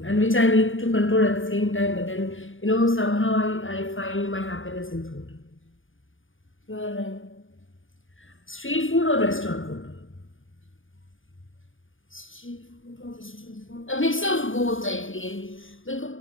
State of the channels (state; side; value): late; right; 0.58 ms